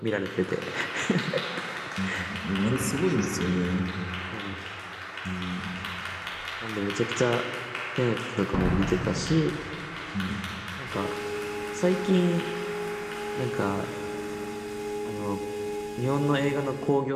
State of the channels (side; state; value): both; identical; correlation 1.00